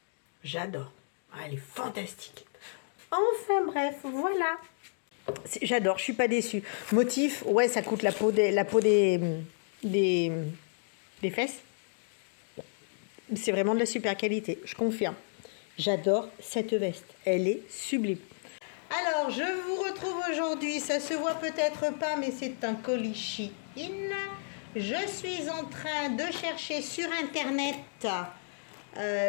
J'adore. Ah, elle est fantastique. Enfin bref, voilà. J'adore, je suis pas déçue. Motif, ouais, ça coûte la peau des fesses. C'est vraiment de la super qualité, je confirme. J'adore cette veste. Elle est sublime. Alors, je vous retrouve aujourd'hui. Ça se voit peut-être pas, mais c'est un colis Shein. Je suis en train de chercher sur Internet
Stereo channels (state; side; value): silent; right; digital silence